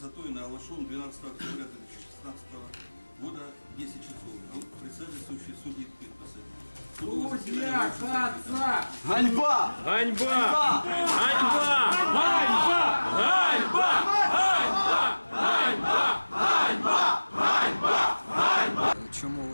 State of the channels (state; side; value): inverted; both; correlation -1.00